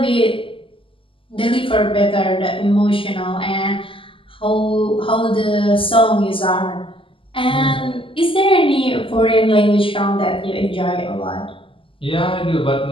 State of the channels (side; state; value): right; late; 0.25 ms